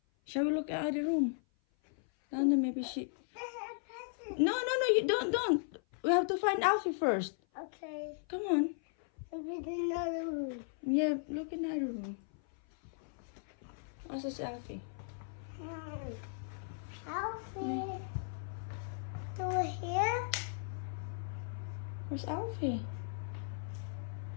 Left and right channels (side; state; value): right; silent; 53 dB below the other